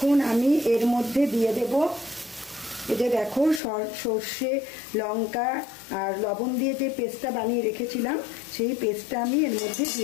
আমি এর মধ্যে দিয়ে দেব, এই যে দেখো সর্ষে লঙ্কা আর লবণ দিয়ে যে পেস্টটা বানিয়ে রেখেছিলাম, সেই পেস্টটা আমি এর মধ্যে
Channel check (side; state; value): right; drops out; at 3.6 s